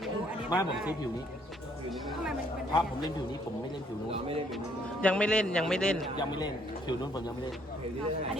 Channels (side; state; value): both; normal; correlation 0.66